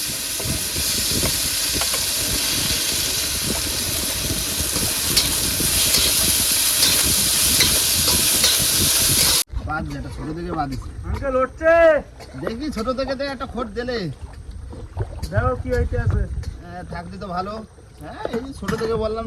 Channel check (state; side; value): identical; both; correlation 1.00